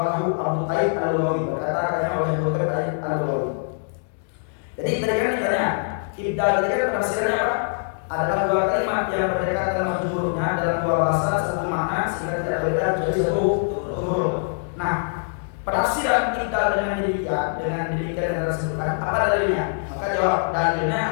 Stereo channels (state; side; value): silent; right; digital silence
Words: Abu Taib al-Lughawi berkata oleh Abu Taib al-Lughawi. Jadi tadi kan ditanya, ibdal tadi kan penafsirannya apa? Adalah dua kalimat yang berdekatan lafaz hurufnya dalam dua bahasa satu makna sehingga tidak berbeda menjadi satu huruf. Nah, penafsiran kita dengan demikian yang disebutkan apa dalilnya? Maka jawab dalilnya